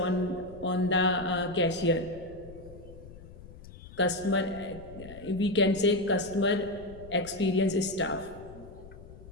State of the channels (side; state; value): left; noise; rumble, 17 dB below the sound